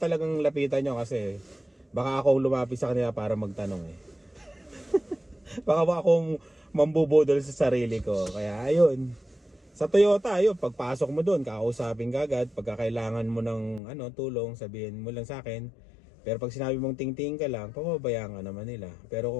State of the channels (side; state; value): right; drops out; at 13.8 s